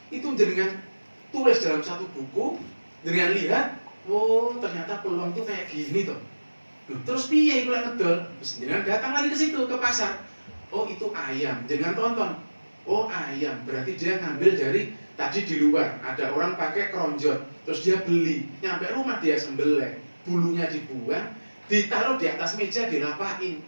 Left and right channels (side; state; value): both; inverted; correlation -1.00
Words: Itu dengan tulis dalam satu buku, dengan lihat, oh, ternyata peluang itu kayak gini toh. Terus piye iku lek ngedol? Terus jenengan datang lagi ke situ ke pasar. Oh, itu ayam. Jangan tonton. Oh, ayam. Berarti dia ngambil dari tadi di luar ada orang pakai keronjot, terus dia beli, nyampe rumah dia sembelih, bulunya dibuang, ditaruh di atas meja dirapain.